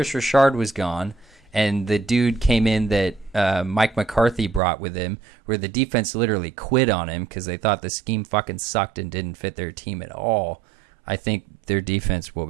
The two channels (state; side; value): drops out; left; at 4.6 s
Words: Richard was gone and the dude came in that Mike McCarthy brought with him, where the defense literally quit on him because they thought the scheme fucking sucked and didn't fit their team at all, I think their defense will